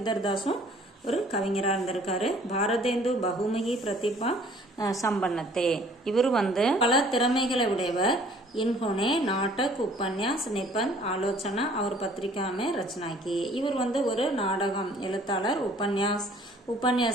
தாஸும் ஒரு கவிஞராக இருந்திருக்காரு. பாரதேந்து பகுமுகி பிரதிபா சம்பன்னத்தே, இவர் வந்து பல திறமைகளை உடையவர். இன்ஹோனே நாடக் உபன்யாஸ் நிபந்த் ஆலோசனா அவர் பத்திரிகாமே ரச்சனாக்கி, இவர் வந்து ஒரு நாடகம் எழுத்தாளர்.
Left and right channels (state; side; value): normal; both; correlation 0.55